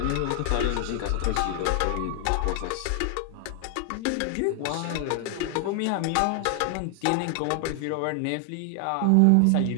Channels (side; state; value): both; different; correlation 0.00